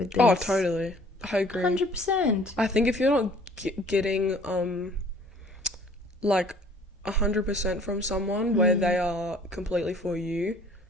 this. Oh, totally. I agree. 100%. I think if you're not getting like 100% from someone where they are completely for you,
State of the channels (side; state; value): both; normal; correlation 0.53